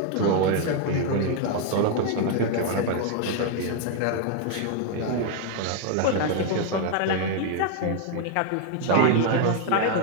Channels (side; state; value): both; different; correlation 0.01